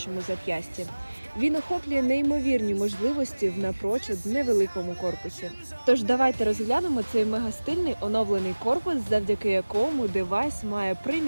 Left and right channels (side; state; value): both; inverted; correlation -1.00